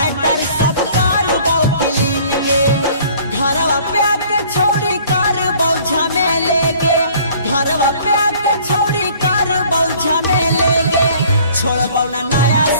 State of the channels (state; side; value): inverted; both; correlation -0.53